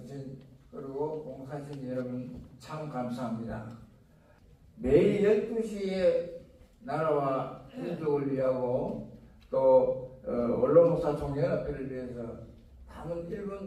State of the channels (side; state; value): both; identical; correlation 1.00